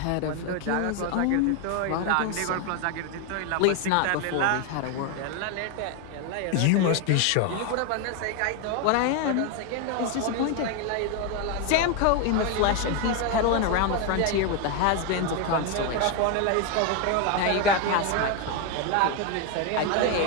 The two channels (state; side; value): different; both; correlation 0.01